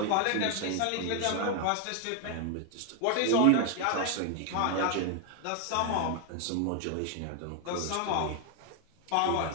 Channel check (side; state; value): both; different; correlation 0.00